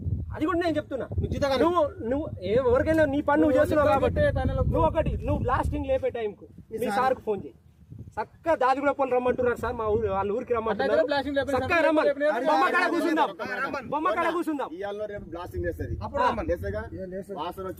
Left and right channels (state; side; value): identical; both; correlation 1.00